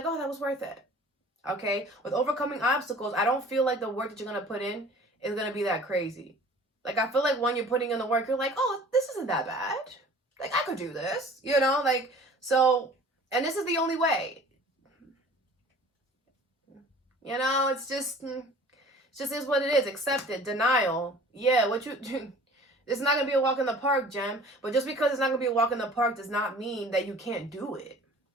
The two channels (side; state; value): both; normal; correlation 0.47